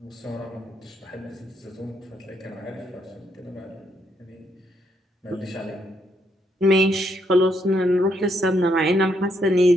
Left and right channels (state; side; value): normal; both; correlation 0.75